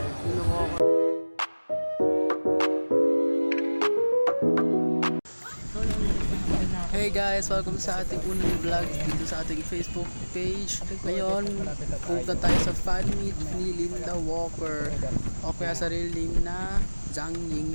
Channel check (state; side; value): inverted; both; correlation -1.00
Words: Hey guys, welcome sa ating unang vlog dito sa ating Facebook page. Ngayon, punta tayo sa fan meet ni Linda Walker o kaya sa real name na Zhang